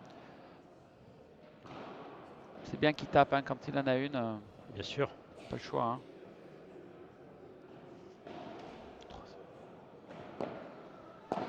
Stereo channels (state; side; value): identical; both; correlation 1.00